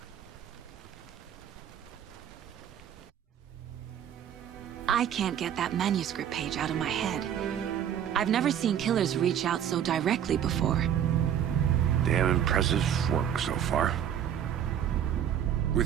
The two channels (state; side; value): quieter; left; 9.5 dB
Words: I can't get that manuscript page out of my head. I've never seen killers reach out so directly before. Damn impressive work so far.